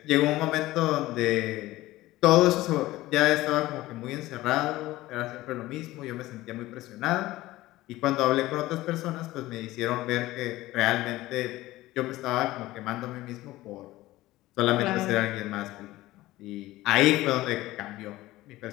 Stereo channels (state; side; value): quieter; right; 17.4 dB